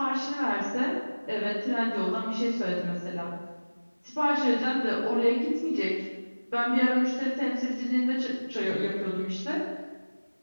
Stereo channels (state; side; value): inverted; both; correlation -1.00